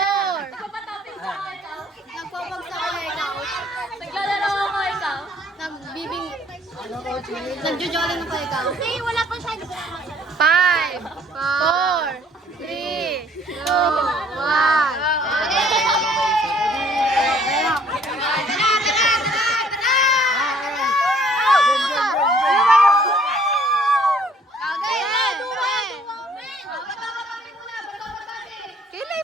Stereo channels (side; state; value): both; normal; correlation 0.59